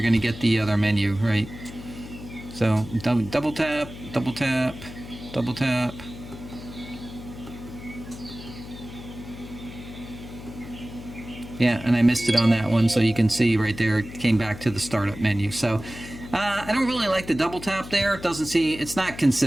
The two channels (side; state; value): left; noise; hum, 13 dB below the sound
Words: going to get the other menu, right? So double tap, double tap, double tap. Yeah, and I missed it on that one, so you can see right there it came back to the startup menu. So I don't really like the double tap there. It doesn't seem, it's not